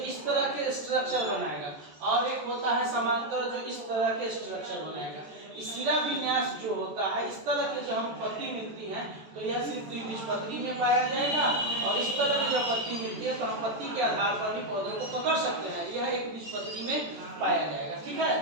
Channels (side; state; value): left; late; 14 ms